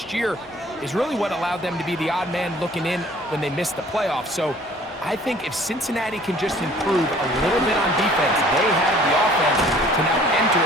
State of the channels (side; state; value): both; normal; correlation 0.53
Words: year, is really what allowed them to be the odd man looking in when they missed the playoffs. So I think if Cincinnati can just improve a little bit on defense, they have the offense to now enter